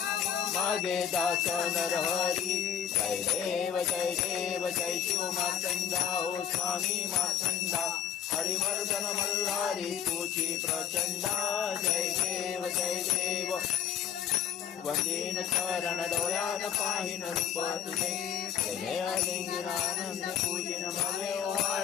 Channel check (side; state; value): right; quieter; 8.7 dB